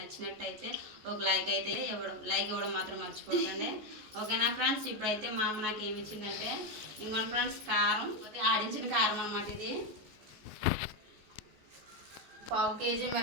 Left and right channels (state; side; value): late; left; 14 ms